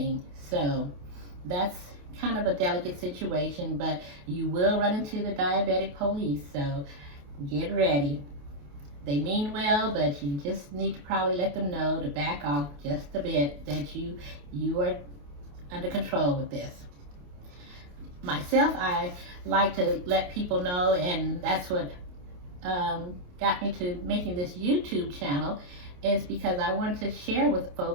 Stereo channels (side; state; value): left; late; 28 ms